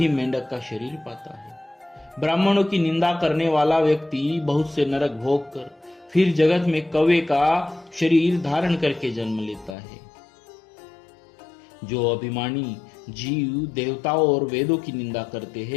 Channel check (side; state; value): right; drops out; at 9.8 s